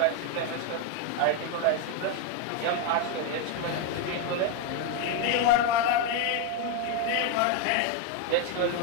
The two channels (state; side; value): different; both; correlation 0.02